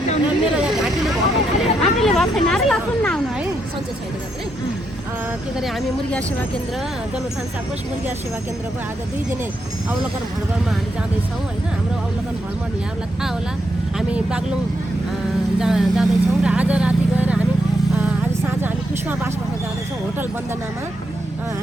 मेरो यहाँ घाँटीले भएको छैन र लसुन नआउनु है सन्चै छैन जत्रै के गरे हामी मुर्गिया सेवा केन्द्र जनउत्थान साकोस मुर्गिया सेवा केन्द्रको आज 2 दिने अवलोकन भ्रमणमा हामी जाँदैछौँ होइन। हाम्रो अवलोकन भ्रमण यहाँहरूलाई थाहा होला, हामी बागलुङ जाँदैछौँ र आज राति गएर हामी आज साँझ हामी पुष्पा बास बस्न जाँदैछौँ होटल वन्दनामा।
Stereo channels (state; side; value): normal; both; correlation 0.80